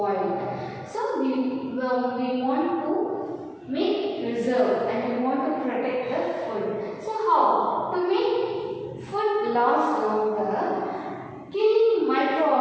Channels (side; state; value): both; identical; correlation 1.00